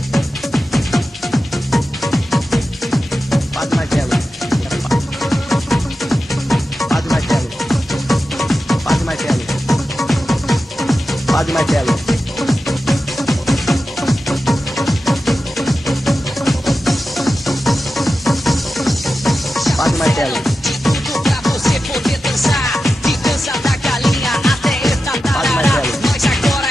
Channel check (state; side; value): normal; both; correlation 0.92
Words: Padre Marcelo. Padre Marcelo. Padre Marcelo. Padre Marcelo. Padre Marcelo. De tudo pra você poder dançar, de dança da galinha até esta tarará. Mas agora